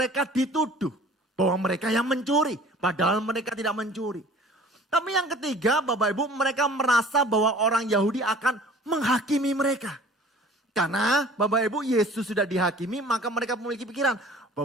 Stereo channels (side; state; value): both; normal; correlation 0.48